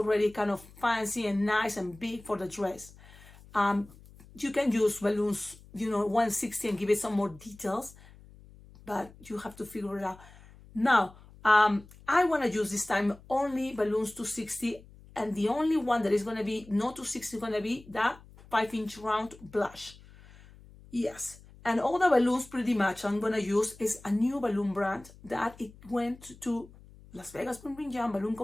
kind of fancy and nice and big for the dress. You can use balloons, 160 and give it some more details, but you have to figure it out. Now, I want to use this time only balloons 260, and the only one that is going to be not 260 is going to be that 5-inch round blush. Yes. And all the balloons pretty much I'm going to use is a new balloon brand that it went to Las Vegas Bling Bling Jam Balloon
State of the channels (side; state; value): left; noise; hum, 22 dB below the sound